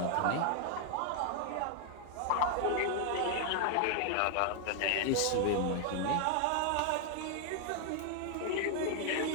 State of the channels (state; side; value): different; both; correlation 0.00